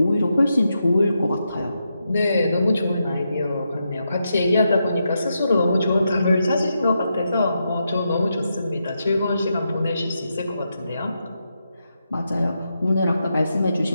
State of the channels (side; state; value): both; inverted; correlation -0.85